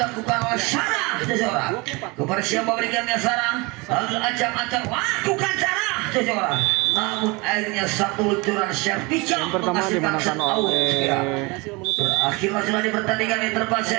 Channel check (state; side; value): quieter; left; 26.2 dB